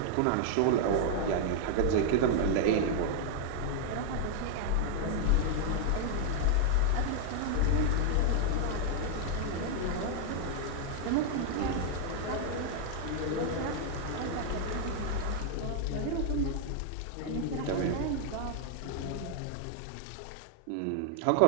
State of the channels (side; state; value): both; different; correlation 0.00